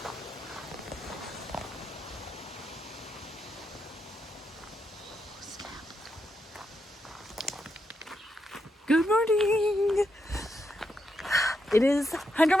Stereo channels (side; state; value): both; normal; correlation 0.83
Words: Good morning. It is